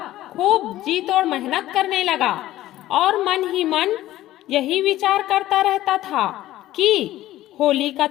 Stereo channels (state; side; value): quieter; right; 14.9 dB